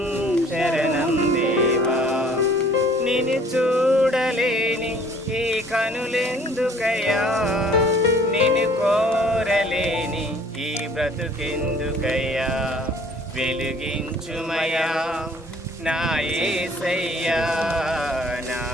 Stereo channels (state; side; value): normal; both; correlation 0.55